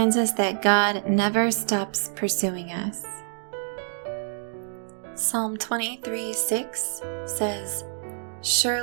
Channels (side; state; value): left; silent; digital silence